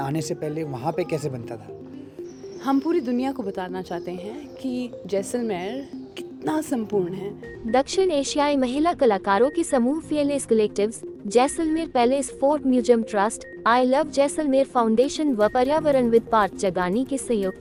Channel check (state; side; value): identical; both; correlation 1.00